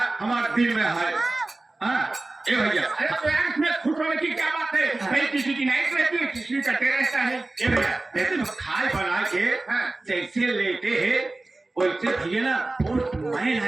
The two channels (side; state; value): left; quieter; 3.0 dB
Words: दिल में है। ए भैया अरे इसमें खुश होने की क्या बात है? भाई किसी की नाइट रहती है, किसी का डे रहता है। ए भैया जैसे तो खाए बना के जैसे लेटे है वैसे भैया ना पोस्टमैन